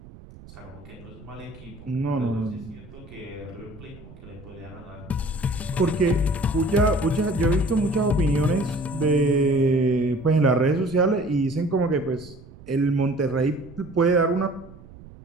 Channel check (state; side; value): noise; right; rumble, 19 dB below the sound